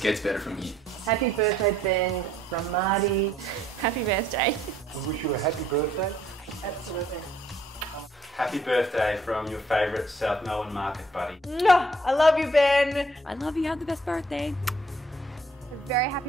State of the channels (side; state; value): both; normal; correlation 0.64